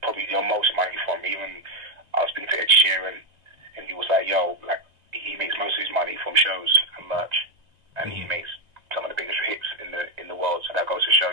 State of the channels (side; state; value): left; late; 1.9 ms